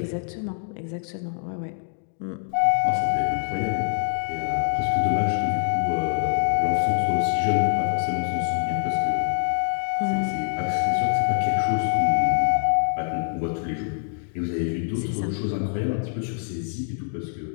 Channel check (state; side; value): silent; right; 62 dB below the other